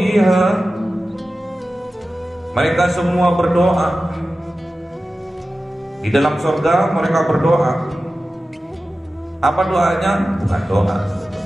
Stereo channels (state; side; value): normal; both; correlation 0.95